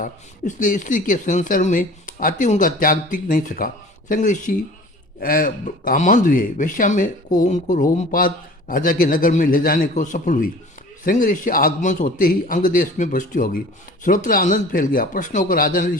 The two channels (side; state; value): both; normal; correlation 0.44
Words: इसलिए स्त्री के संसार में आते उनका त्याग टिक नहीं सका। श्रृंग ऋषि कामांध हुए। वैश्या में को उनको रोमपाद राजा के नगर में ले जाने को सफल हुई। श्रृंग ऋषि आगमन होते ही अंग देश में वृष्टि हो गई। सर्वत्र आनंद फैल गया। प्रश्न होकर राजा ने